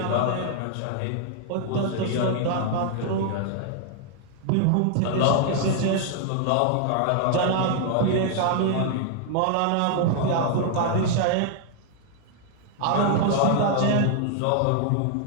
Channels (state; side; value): different; both; correlation 0.00